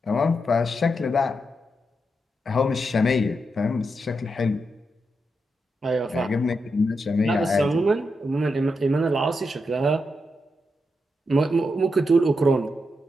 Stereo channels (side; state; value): both; normal; correlation 0.85